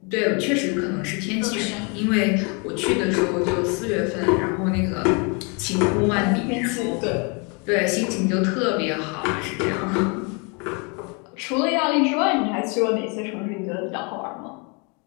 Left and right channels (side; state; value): right; quieter; 33.2 dB